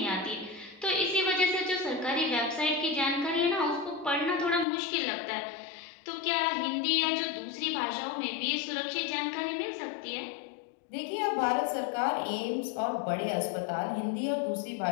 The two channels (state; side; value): drops out; right; at 4.7 s